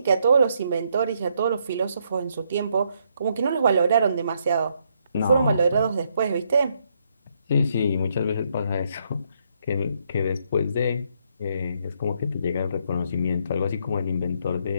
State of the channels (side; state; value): both; inverted; correlation -0.74